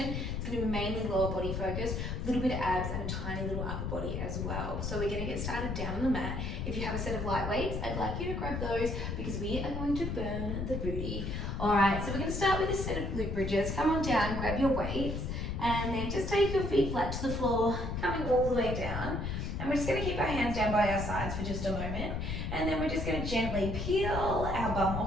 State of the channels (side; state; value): left; noise; rumble, 3 dB below the sound